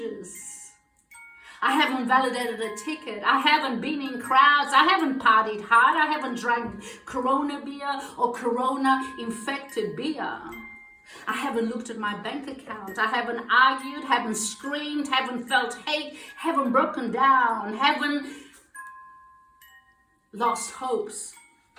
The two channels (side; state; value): both; identical; correlation 1.00